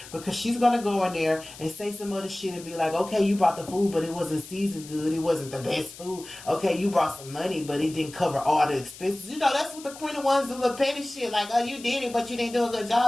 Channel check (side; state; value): left; noise; hiss, 17 dB below the sound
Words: because she's gonna go in there and say some other shit and be like, okay, you brought the food, but it wasn't seasoned good. It wasn't the best food. Okay, you brought some money, but it didn't cover all the expenses. You know, that's what the Queen of Wands do, little petty shit. Like, oh, you did it, but you didn't do a good